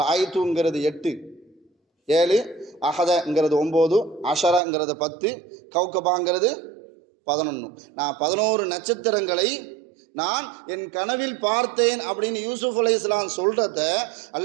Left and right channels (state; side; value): drops out; left; at 4.6 s